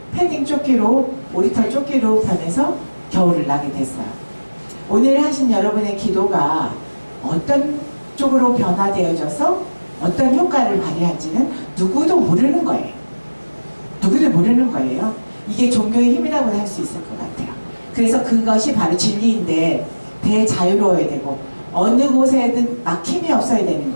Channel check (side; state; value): both; inverted; correlation -1.00